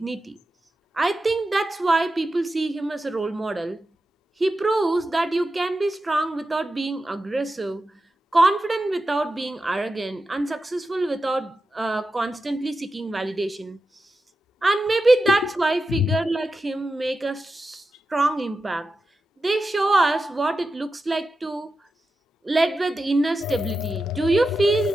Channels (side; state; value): both; normal; correlation 0.91